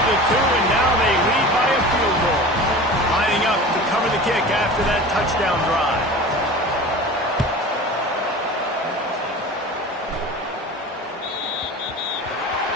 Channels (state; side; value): normal; both; correlation 0.36